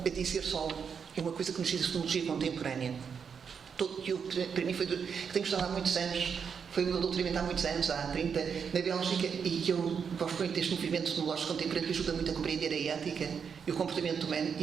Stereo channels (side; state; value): left; quieter; 6.6 dB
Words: a dizer só uma coisa que nos diz a fenomenologia contemporânea. Para mim foi que tenho estudado há muitos anos, foi o meu doutoramento há muitos anos, há 30, na Bélgica, e que eu gosto muito deste movimento fenomenológico contemporâneo que ajuda muito a compreender a ética e o comportamento humano